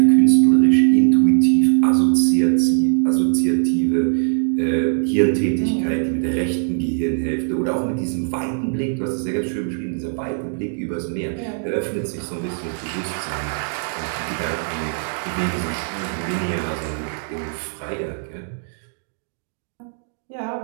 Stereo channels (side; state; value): left; silent; digital silence